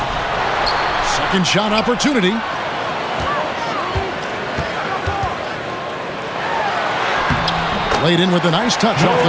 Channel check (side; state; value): both; identical; correlation 1.00